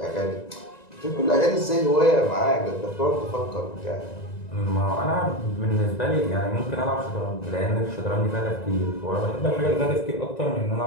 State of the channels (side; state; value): right; late; 1.9 ms